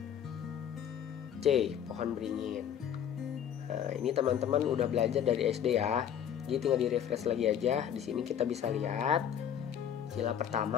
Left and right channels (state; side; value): quieter; right; 9.2 dB